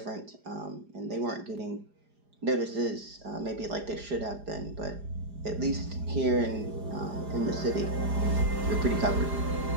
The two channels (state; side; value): late; left; 4.9 ms